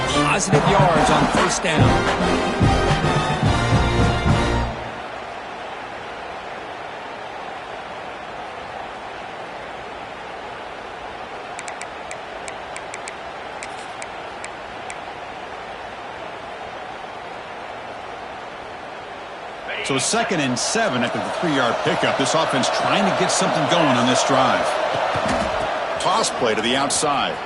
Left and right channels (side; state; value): both; identical; correlation 1.00